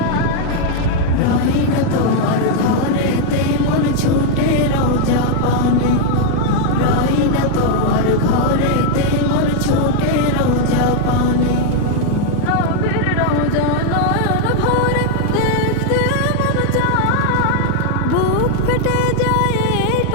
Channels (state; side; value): different; both; correlation 0.00